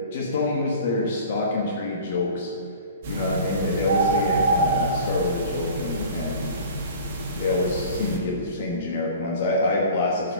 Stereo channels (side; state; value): both; inverted; correlation -0.42